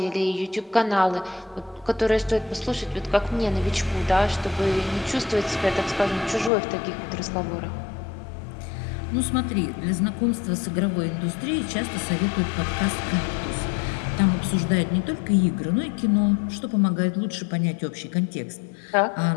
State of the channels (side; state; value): right; drops out; at 6.5 s